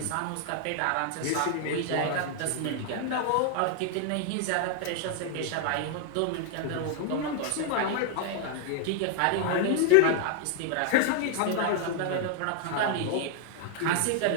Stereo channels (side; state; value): both; different; correlation 0.00